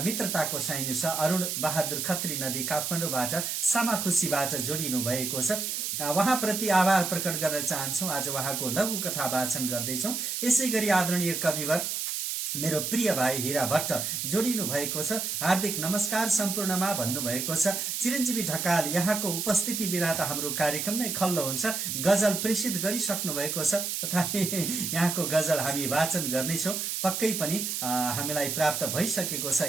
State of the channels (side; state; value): right; noise; hiss, 2 dB below the sound